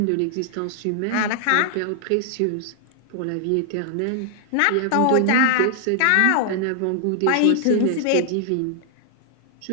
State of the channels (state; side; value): different; both; correlation 0.00